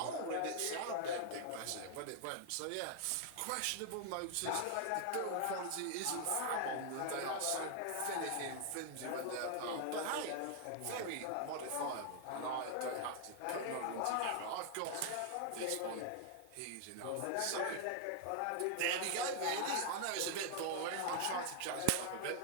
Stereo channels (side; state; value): both; different; correlation -0.01